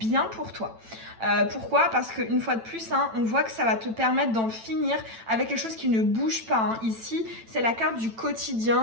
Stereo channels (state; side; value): late; left; 9.0 ms